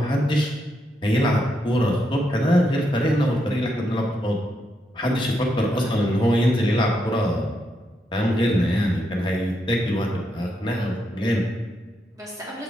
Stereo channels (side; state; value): both; normal; correlation 0.81